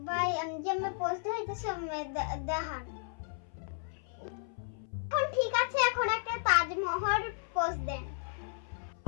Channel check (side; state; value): right; silent; 55 dB below the other